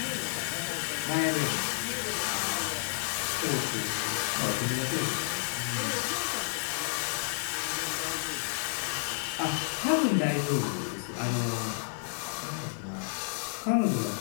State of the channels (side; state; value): right; silent; 57 dB below the other